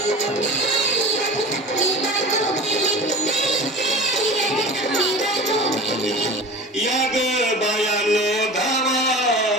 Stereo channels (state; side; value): normal; both; correlation 0.35